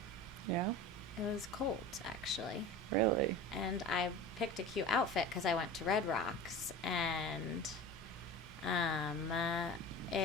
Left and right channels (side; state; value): both; normal; correlation 0.34